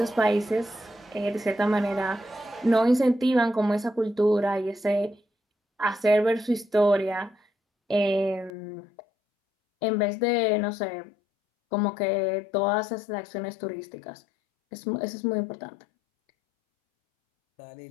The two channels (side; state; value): right; drops out; at 8.5 s